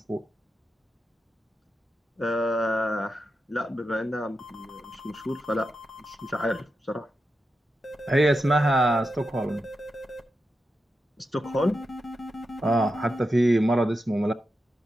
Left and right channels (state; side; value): normal; both; correlation 0.88